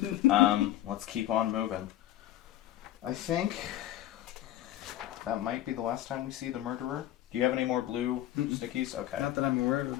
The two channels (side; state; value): right; quieter; 13.5 dB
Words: Let's keep on moving. I think that might be the last time we see the murderer. Do you have any more blue stickies? Okay. Not that I'm aware of.